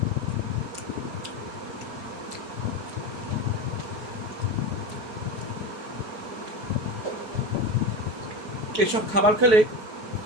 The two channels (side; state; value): left; late; 4.7 ms